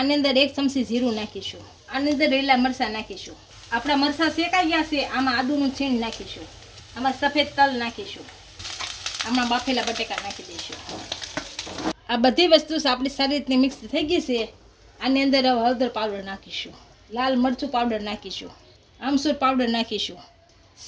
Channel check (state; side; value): identical; both; correlation 1.00